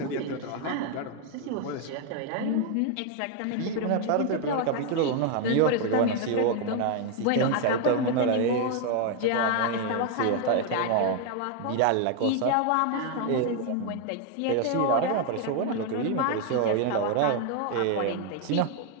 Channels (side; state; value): both; different; correlation 0.00